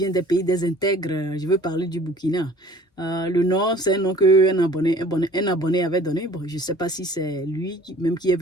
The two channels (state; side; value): normal; both; correlation 0.50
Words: des pays désintègres. Je veux parler du Burkina. Le nom, c'est un nom qu'un abonné avait donné. Bon, je ne sais pas si c'est lui même qui est